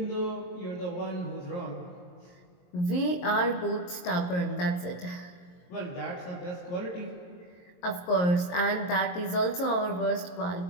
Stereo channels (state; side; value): late; right; 22 ms